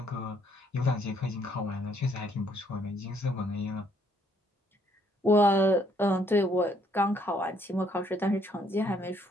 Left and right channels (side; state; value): both; normal; correlation 0.67